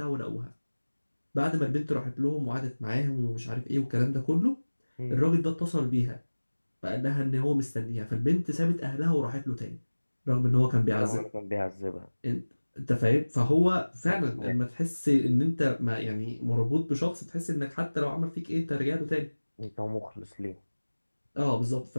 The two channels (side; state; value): both; inverted; correlation -1.00